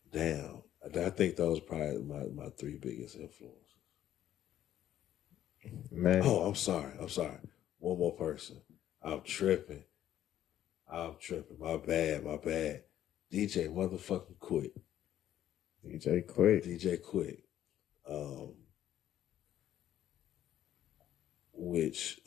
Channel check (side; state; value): right; quieter; 11.7 dB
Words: damn, I think those are probably my three biggest influences. Man, Oh, I'm sorry. One more person. I'm tripping. My bad. DJ motherfucking Quick. DJ Quick. DJ Quick. Which